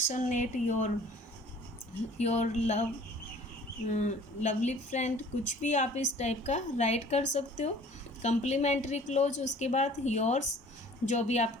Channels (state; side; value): normal; both; correlation 0.50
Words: your love, lovely friend, कुछ भी आप इस टाइप का राइट कर सकते हो। कंप्लीमेंट्री क्लोज, उसके बाद योर्स, जो भी